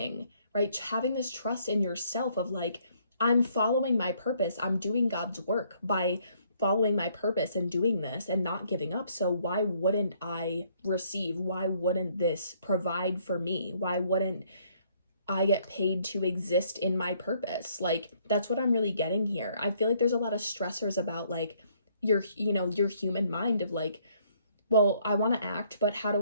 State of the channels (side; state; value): both; inverted; correlation -0.66